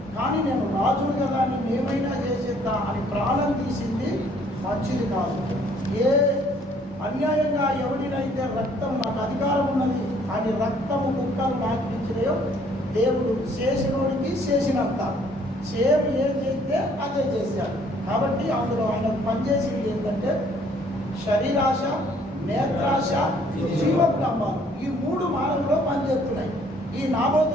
కానీ నేను రాజును కదా నేను ఏమైనా చేసేద్దా అని ప్రాణం తీసింది మంచిది కాదు. ఏ అన్యాయంగా ఎవరినైతే రక్తం నాకు అధికారం ఉన్నది అని రక్తము ముక్కలు నాకు ఇచ్చినాయో దేవుడు చేసినోడికి చేసినంత సేమ్ ఏం చేస్తే అదే చేశాడు. కాబట్టి అందులో ఆయన పనిచేసింది ఏంటంటే శరీరాశ, నేత్రాశ, జీవపు డంబాలు, ఈ 3 మార్గంలో పనిచేస్తున్నాయి. ఈ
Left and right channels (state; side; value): normal; both; correlation 0.61